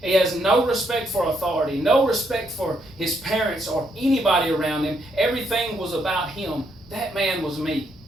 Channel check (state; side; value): normal; both; correlation 0.75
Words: He has no respect for authority, no respect for his parents or anybody around him. Everything was about him. That man was me.